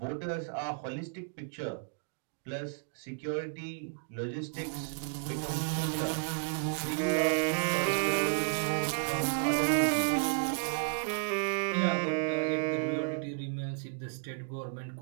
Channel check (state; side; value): silent; left; digital silence